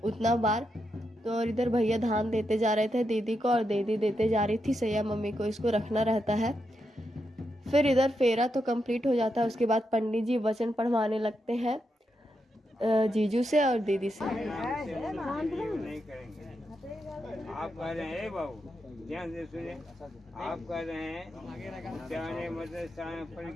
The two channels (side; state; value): both; normal; correlation 0.84